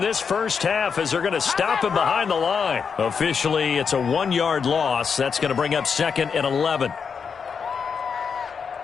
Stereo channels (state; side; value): quieter; right; 6.2 dB